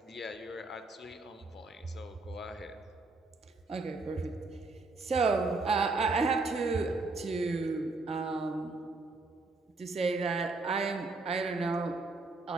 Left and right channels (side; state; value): left; quieter; 3.5 dB